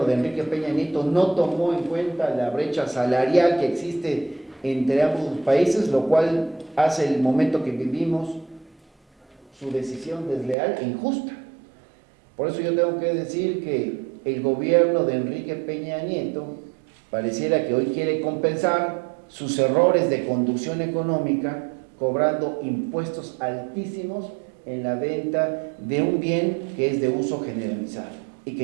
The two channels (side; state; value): left; drops out; at 10.6 s